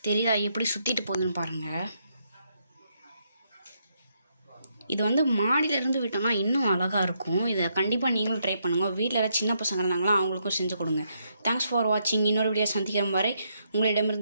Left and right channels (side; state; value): both; inverted; correlation -0.77